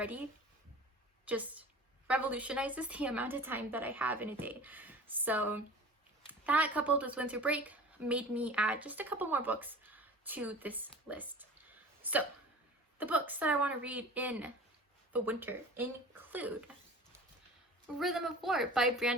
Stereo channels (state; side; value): normal; both; correlation 0.40